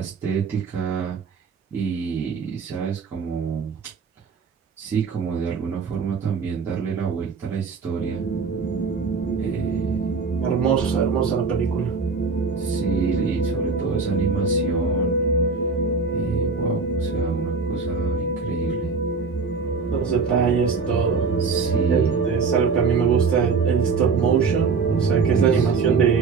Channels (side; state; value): left; quieter; 4.8 dB